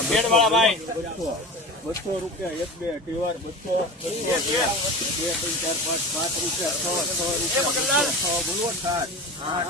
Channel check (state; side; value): normal; both; correlation 0.33